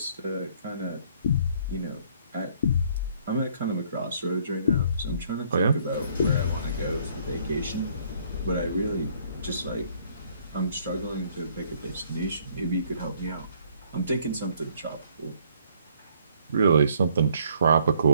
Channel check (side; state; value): both; inverted; correlation -0.62